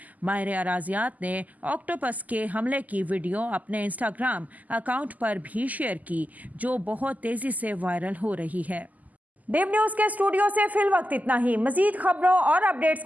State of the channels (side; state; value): left; late; 0.079 ms